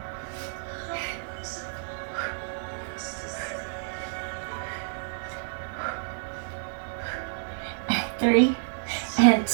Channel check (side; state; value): left; silent; digital silence